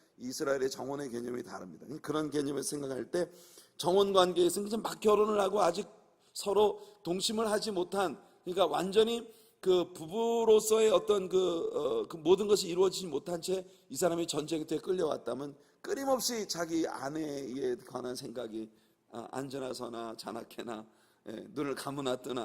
이스라엘의 정혼의 개념이 다릅니다. 그런 개념을 생각할 때 정혼 관계에서 이제 막 결혼을 하고 아직 서로 동침을 하지 못한, 그러니까 완전히 그 부부로서의 어떤 그 모든 것이 이루어지지 못한 채 이 사람이 전쟁터에 끌려왔다면 끊임없이 자기 아내에 관한 생각이 앉으나 서나 자나깨나 눈을 감으나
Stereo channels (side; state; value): both; identical; correlation 1.00